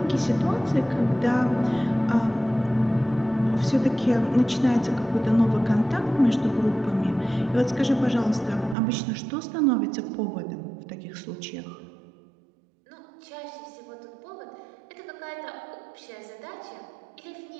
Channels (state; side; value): drops out; left; at 8.8 s